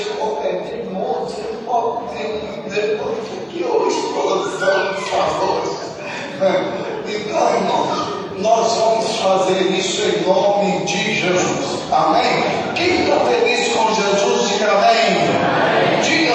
qualquer dia, moço, você pode ter depois que hoje explosão dos favores. Então, irmãos, nós vamos fazer isso em nome de Jesus. Amém? Quem está feliz com Jesus, diga amém. Diga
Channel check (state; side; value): identical; both; correlation 1.00